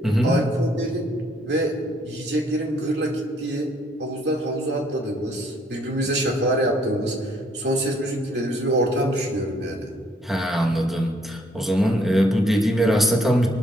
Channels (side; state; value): both; normal; correlation 0.66